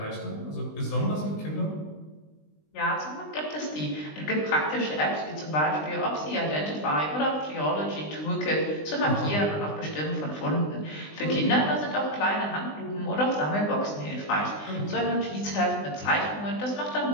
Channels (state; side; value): late; right; 20 ms